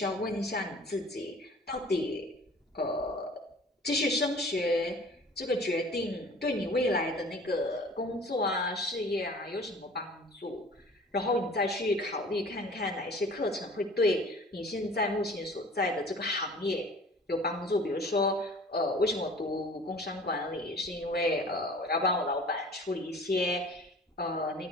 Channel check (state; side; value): normal; both; correlation 0.46